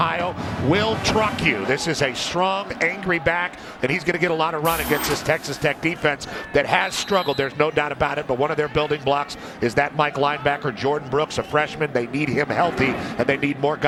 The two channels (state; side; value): identical; both; correlation 1.00